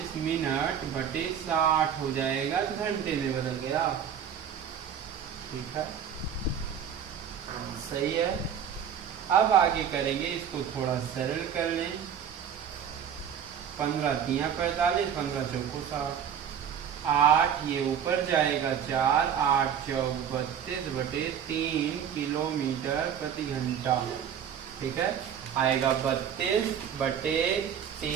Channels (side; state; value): left; quieter; 8.4 dB